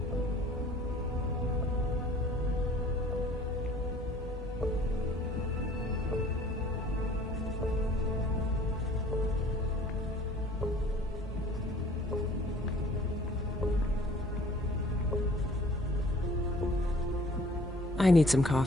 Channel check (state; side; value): normal; both; correlation 0.52